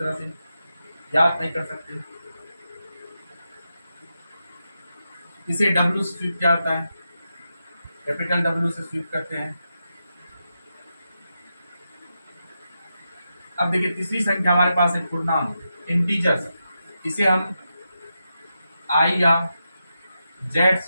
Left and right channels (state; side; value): inverted; both; correlation -0.87